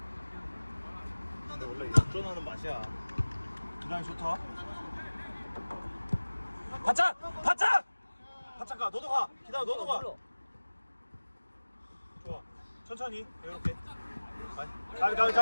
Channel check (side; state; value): both; inverted; correlation -1.00